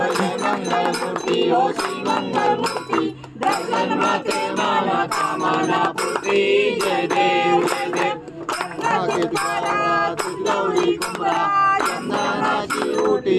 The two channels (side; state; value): both; identical; correlation 1.00